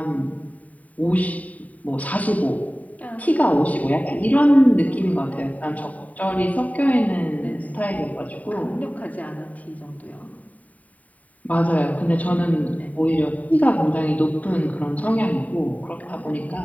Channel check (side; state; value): right; late; 0.071 ms